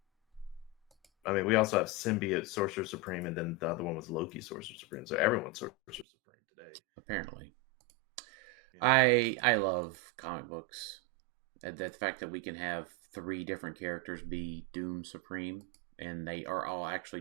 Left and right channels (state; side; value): drops out; left; at 6.1 s